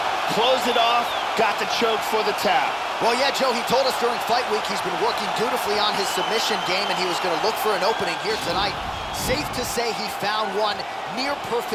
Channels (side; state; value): both; identical; correlation 1.00